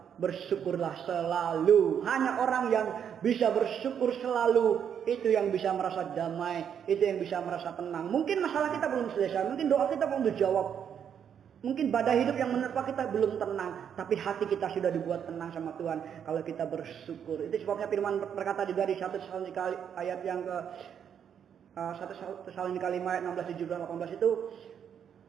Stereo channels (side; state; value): left; quieter; 8.3 dB